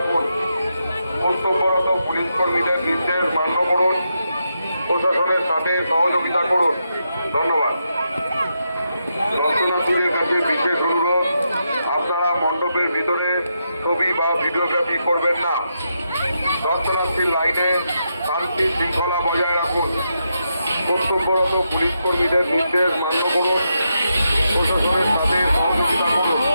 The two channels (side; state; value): both; inverted; correlation -0.83